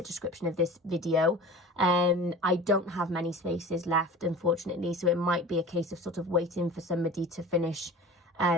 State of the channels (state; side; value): normal; both; correlation 0.38